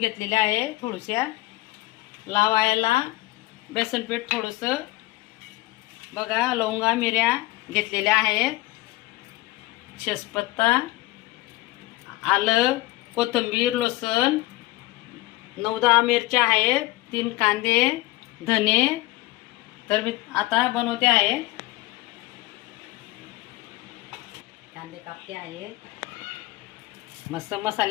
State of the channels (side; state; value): right; quieter; 19.5 dB